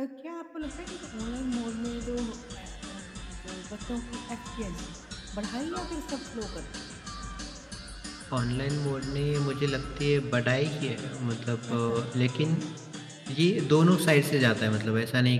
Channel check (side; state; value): both; identical; correlation 1.00